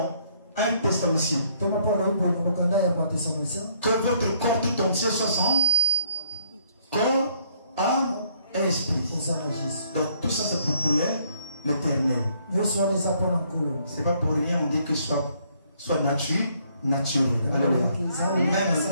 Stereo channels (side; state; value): both; inverted; correlation -0.66